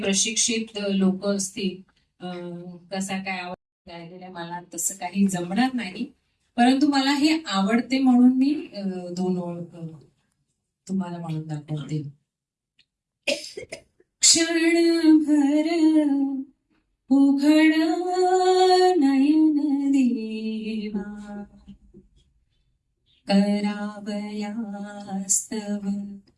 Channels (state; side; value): identical; both; correlation 1.00